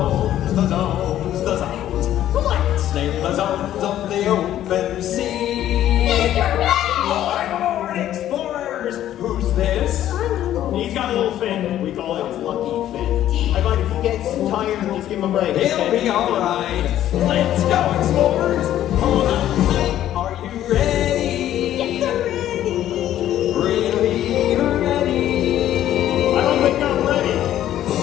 the zones, the zones. Let's snake the zones of the open sea. Lord explorers! Who's this? He's got a little fin. We call it his lucky fin. I find if he gets tired, just give him a break. He'll be alright. Let's go, explorers! Hold on tight. Are you ready? Yes, I'm ready. Really ready? I don't think I'm ready.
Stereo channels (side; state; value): right; quieter; 12.2 dB